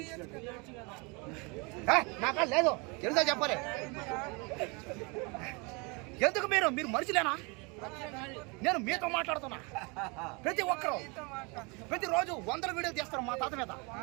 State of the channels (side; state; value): left; quieter; 29.8 dB